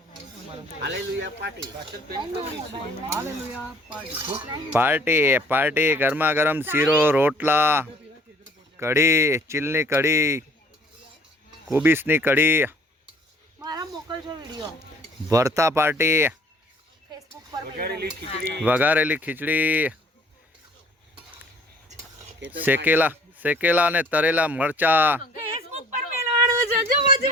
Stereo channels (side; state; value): both; normal; correlation 0.55